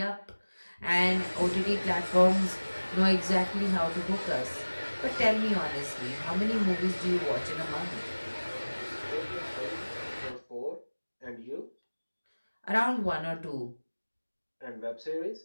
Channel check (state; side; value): inverted; both; correlation -1.00